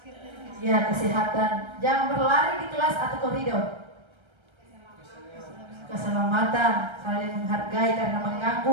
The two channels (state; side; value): late; left; 1.3 ms